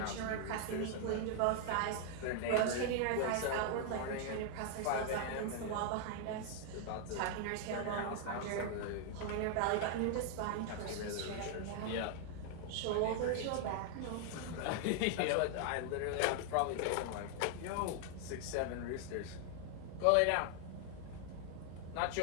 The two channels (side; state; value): both; different; correlation 0.00